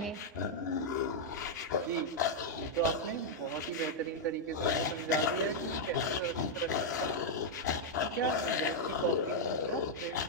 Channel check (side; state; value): both; normal; correlation -0.03